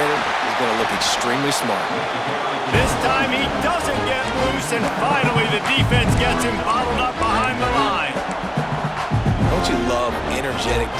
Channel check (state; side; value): identical; both; correlation 1.00